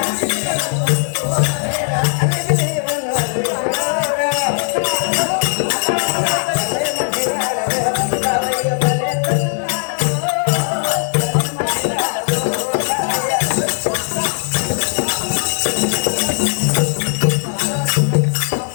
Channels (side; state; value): right; silent; digital silence